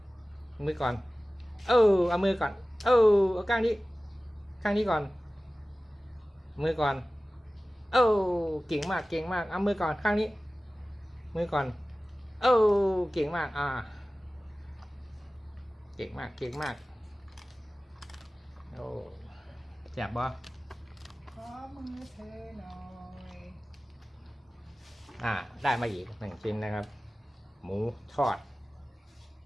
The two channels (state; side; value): normal; both; correlation 0.97